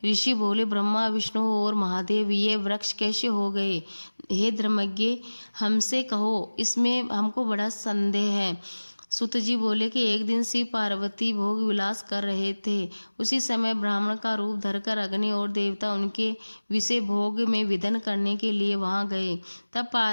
ऋषि बोले, ब्रह्मा विष्णु और महादेव ये वृक्ष कैसे हो गए? हे धर्मज्ञ, हमसे कहो, इसमें हमको बड़ा संदेह है। सुत जी बोले कि एक दिन शिव पार्वती भोग विलास कर रहे थे। उसी समय ब्राह्मण का रूप धरकर अग्नि और देवता उनके विषय भोग में विधन करने के लिए वहां गए। तब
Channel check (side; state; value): both; inverted; correlation -1.00